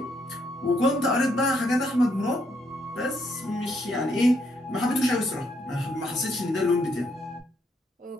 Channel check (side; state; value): both; normal; correlation 0.74